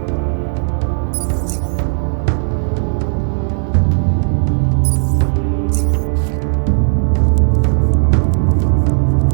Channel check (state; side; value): silent; left; 63 dB below the other